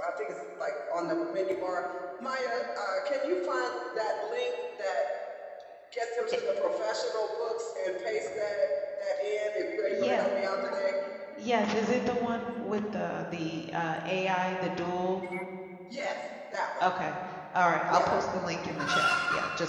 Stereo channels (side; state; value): both; identical; correlation 1.00